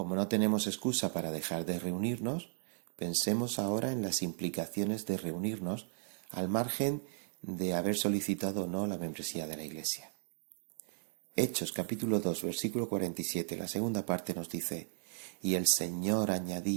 no tenemos excusa para dejar de reunirnos, pensemos ahora en las implicaciones de reunirnos al margen de haber solicitado o no la membresía de la iglesia. Hechos capítulo 2, versículo 47, la segunda parte nos dice: y el Señor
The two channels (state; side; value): silent; left; digital silence